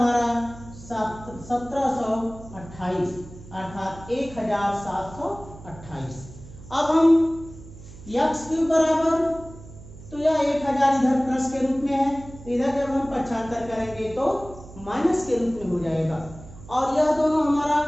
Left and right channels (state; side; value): noise; right; hum, 17 dB below the sound